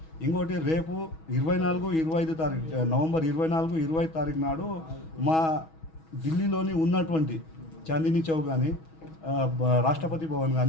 ఇంకోటి, రేపు 24-25 తారీఖు నవంబర్ 24-25 తారీఖు నాడు మా ఢిల్లీలోని ఉన్నటువంటి చాందినీ చౌక్ కానీ, రాష్ట్రపతి భవన్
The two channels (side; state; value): right; late; 6.2 ms